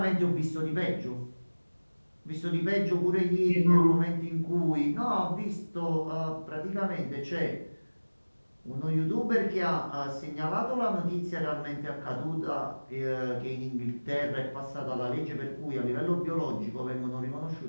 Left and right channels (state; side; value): inverted; both; correlation -1.00